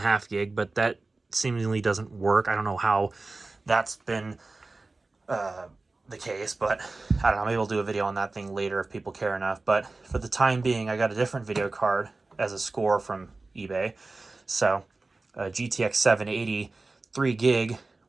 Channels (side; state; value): left; quieter; 3.5 dB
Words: gig, but that seemingly doesn't work. I don't know how that's been the case, but I don't know, maybe we'll do a video on that thing later if people care enough. But for the time being, I got a different video card as a score from eBay. So a GTX 780 3 gig,